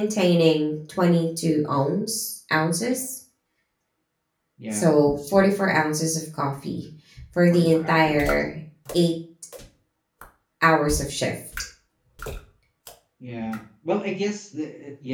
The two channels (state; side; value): identical; both; correlation 1.00